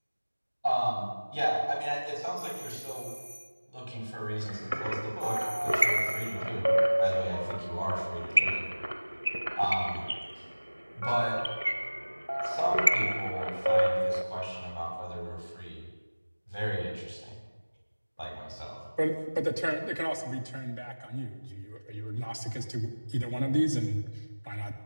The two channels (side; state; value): both; inverted; correlation -1.00